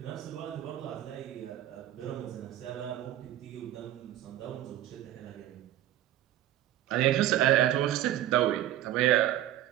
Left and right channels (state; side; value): quieter; left; 13.1 dB